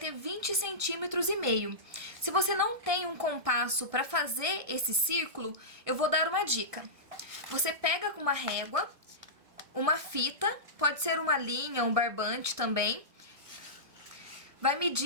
20 centímetros e meio. Se você não tem um compasso para fazer esse círculo, eu vou dar uma dica. Você pega com uma régua, uma fita, pode ser uma linha, um barbante também. Vai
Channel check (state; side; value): late; left; 1.6 ms